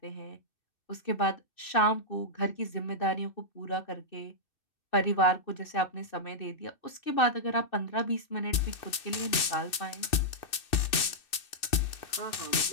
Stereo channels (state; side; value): late; right; 2.6 ms